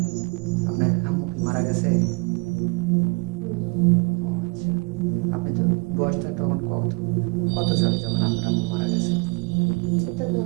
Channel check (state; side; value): quieter; left; 32.4 dB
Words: আপনার আম্মু কি মারা গেছে? ও আচ্ছা, আপনি তো বয়সটা তখন কত কত সালে যখন আপনার আম্মু মারা গেছে? এটা তো